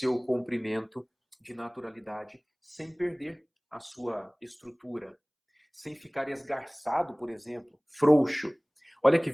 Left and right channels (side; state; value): both; identical; correlation 1.00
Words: comprimento de naturalidade sem perder a sua estrutura, sem ficar esgarçado, por exemplo, frouxo. Olha que